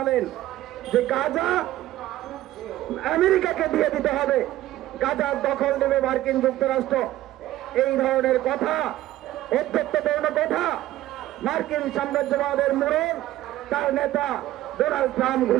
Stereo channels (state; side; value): quieter; left; 14.9 dB